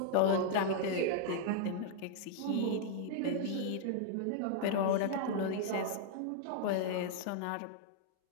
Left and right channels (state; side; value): different; both; correlation -0.01